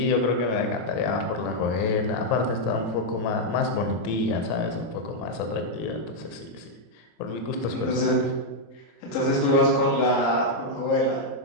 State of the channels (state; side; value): late; right; 27 ms